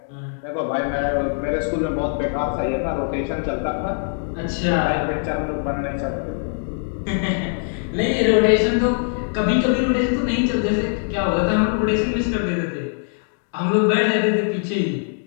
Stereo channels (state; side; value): silent; right; 63 dB below the other